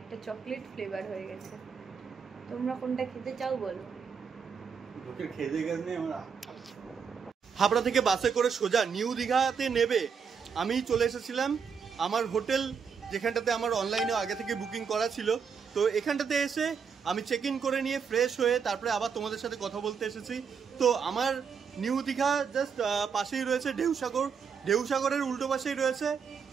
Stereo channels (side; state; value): left; quieter; 6.4 dB